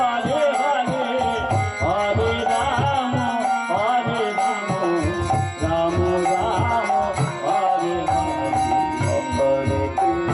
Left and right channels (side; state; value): both; identical; correlation 1.00